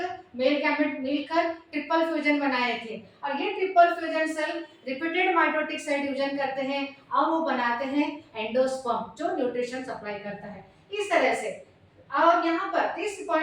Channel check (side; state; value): both; identical; correlation 1.00